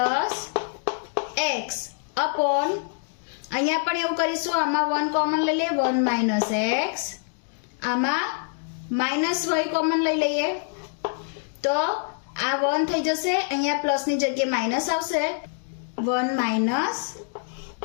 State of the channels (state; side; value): silent; right; digital silence